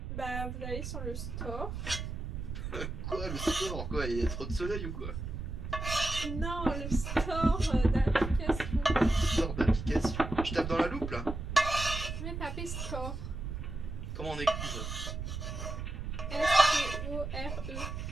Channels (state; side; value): noise; right; rumble, 6 dB below the sound